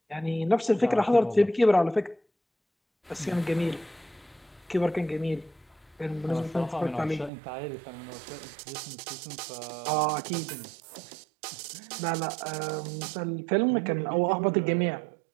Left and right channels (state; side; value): drops out; left; at 7.3 s